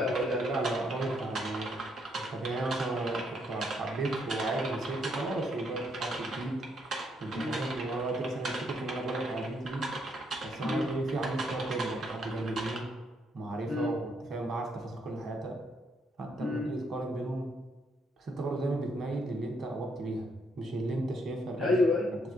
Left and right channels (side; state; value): both; normal; correlation 0.73